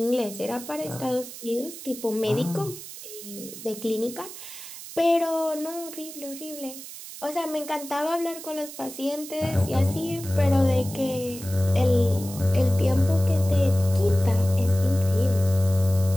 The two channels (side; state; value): right; noise; hiss, 13 dB below the sound